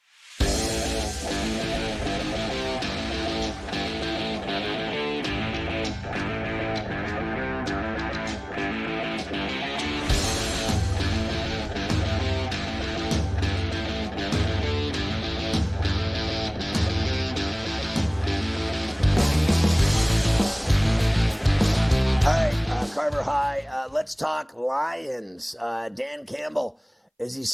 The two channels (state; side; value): identical; both; correlation 1.00